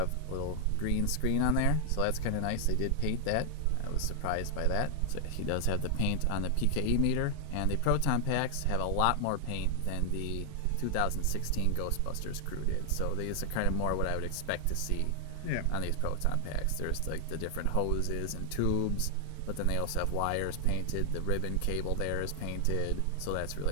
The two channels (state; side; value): different; both; correlation 0.00